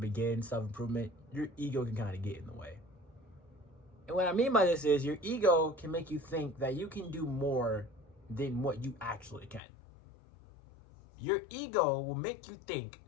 self-improvement, your ego can kind of get in the way. And what I mean by this is your ego can make you think that you can do more than what you actually can. Your ego will make you think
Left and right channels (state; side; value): drops out; right; at 9.6 s